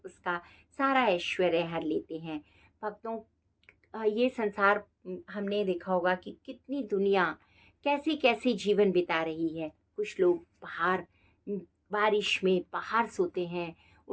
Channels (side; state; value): both; identical; correlation 1.00